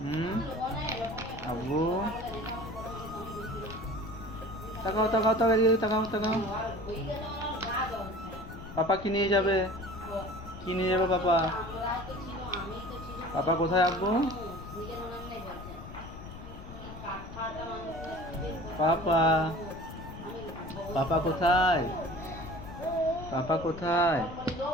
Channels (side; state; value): left; noise; rumble, 13 dB below the sound